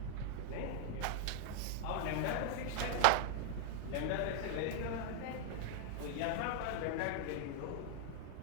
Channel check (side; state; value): both; different; correlation -0.01